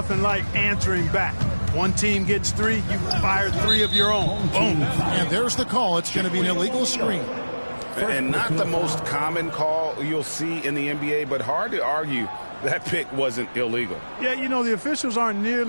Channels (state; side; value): inverted; both; correlation -1.00